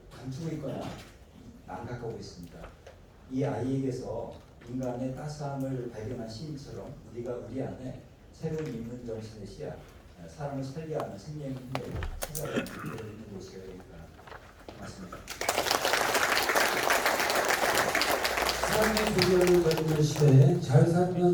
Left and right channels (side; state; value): both; identical; correlation 1.00